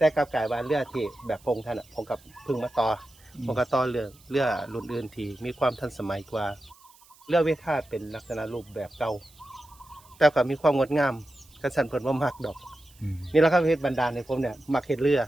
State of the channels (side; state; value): right; noise; hiss, 27 dB below the sound